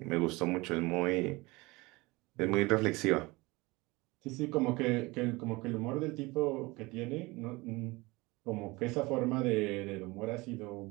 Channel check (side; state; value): left; quieter; 23.0 dB